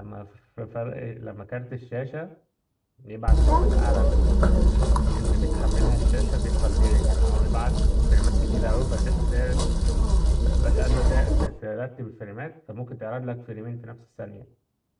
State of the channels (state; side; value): identical; both; correlation 1.00